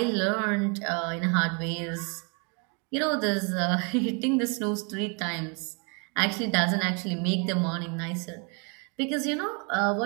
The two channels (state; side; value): quieter; left; 34.3 dB